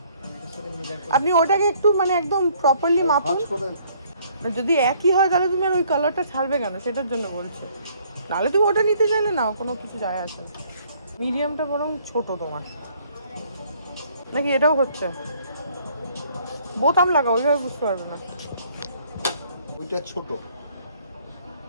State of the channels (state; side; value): inverted; both; correlation -0.62